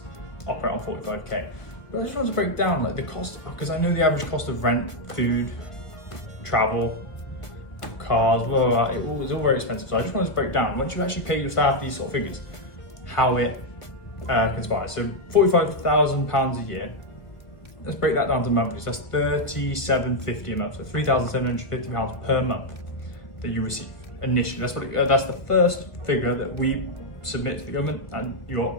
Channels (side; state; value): right; late; 1.5 ms